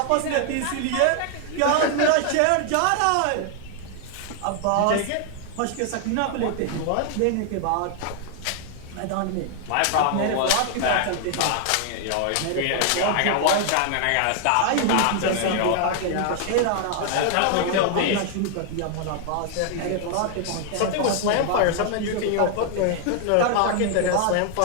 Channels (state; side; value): different; both; correlation 0.00